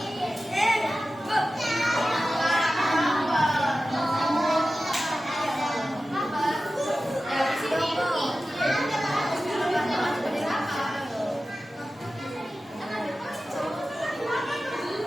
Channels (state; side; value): normal; both; correlation 0.94